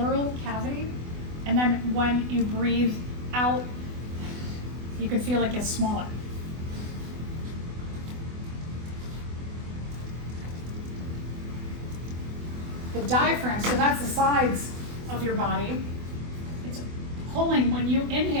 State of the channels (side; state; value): left; late; 24 ms